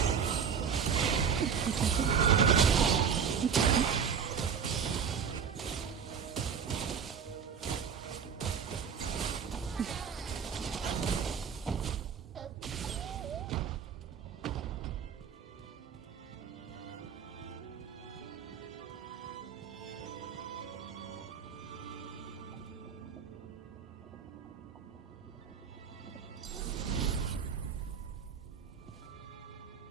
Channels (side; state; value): left; quieter; 7.0 dB